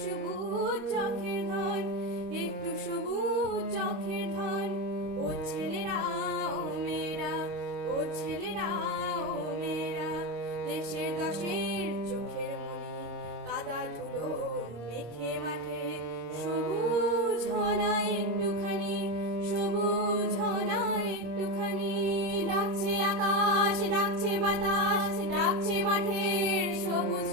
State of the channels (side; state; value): left; late; 26 ms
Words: সবুজ চোখের ধন, একটু সবুজ চোখের ধন। ও ছেলেরা ও মেয়েরা, ও ছেলেরা ও মেয়েরা, দেশের দশের চোখের মনি কাদা ধুলো মেখে মাঠে। সবুজ হনা একটুখানি, সবুজ হনা একটুখানি। ডাকছে আকাশ, ডাকছে বাতাস, ডাকছে মাঠের সবুজ